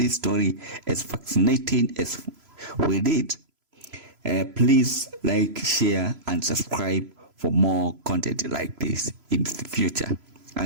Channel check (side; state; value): left; late; 3.0 ms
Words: story as fascinating as we did, please like, share, and subscribe for more content like this in the future.